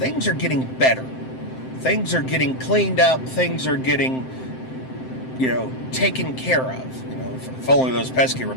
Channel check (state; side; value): late; right; 7.7 ms